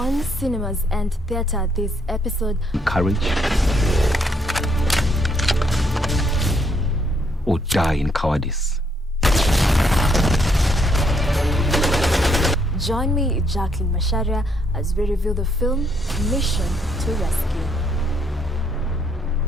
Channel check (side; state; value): both; normal; correlation 0.71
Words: cinemas and theater this episode. Courage or die in cowardice. Join me, Jacqueline Masharia, as we review the film Mission to Rescue.